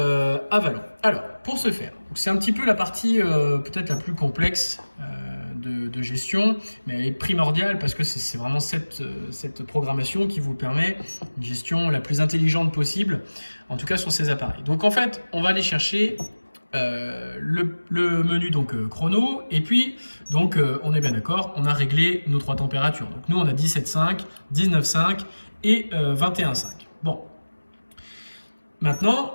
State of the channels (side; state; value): both; inverted; correlation -1.00